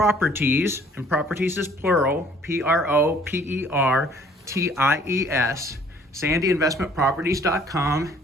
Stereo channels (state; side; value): normal; both; correlation 0.57